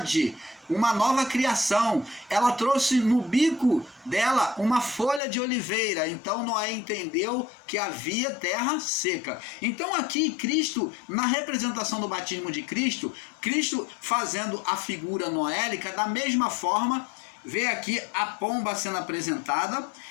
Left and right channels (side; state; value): right; drops out; at 5.2 s